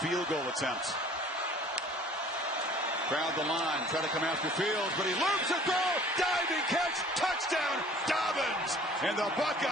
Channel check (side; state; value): both; normal; correlation 0.51